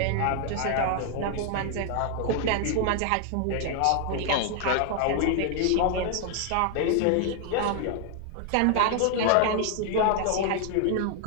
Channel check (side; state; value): both; different; correlation 0.00